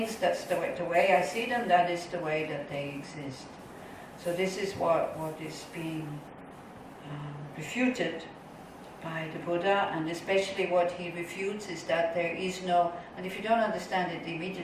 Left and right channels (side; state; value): both; identical; correlation 1.00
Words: that's the way I see them, that is the way that they exist. So this is what is being refuted by the Buddha, and especially what he refutes is that there is no, and if you don't understand it